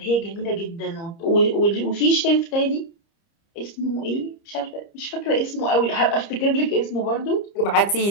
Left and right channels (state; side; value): late; right; 30 ms